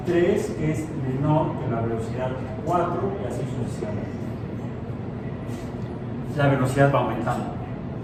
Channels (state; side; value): identical; both; correlation 1.00